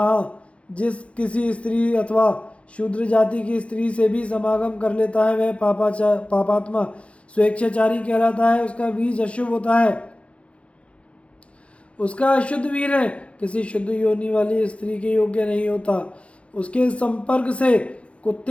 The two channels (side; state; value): right; late; 0.061 ms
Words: जिस किसी स्त्री अथवा शूद्र जाति की स्त्री से भी समागम कर लेता है वह पापात्मा स्वेच्छाचारी कहलाता है। उसका बीज अशुभ होता है, उसका अशुद्ध वीर है किसी शुद्ध योनि वाली स्त्री के योग्य नहीं होता। उसके संपर्क से